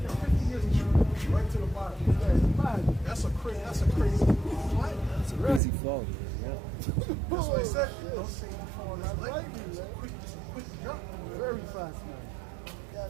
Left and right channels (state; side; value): drops out; left; at 5.6 s